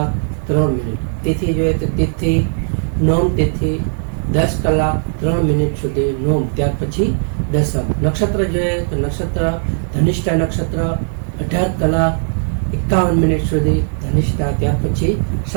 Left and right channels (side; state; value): left; silent; digital silence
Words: તિથિ જોઈએ તો તિથિ નોમ તિથિ 10:03 સુધી નોમ, ત્યાર પછી દસમ. નક્ષત્ર જોઈએ તો નક્ષત્ર ધનિષ્ઠા નક્ષત્ર 18:51 સુધી ધનિષ્ઠા, ત્યાર પછી